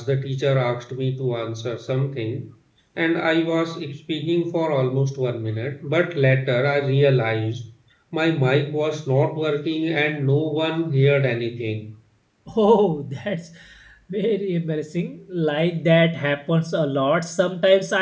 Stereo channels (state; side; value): identical; both; correlation 1.00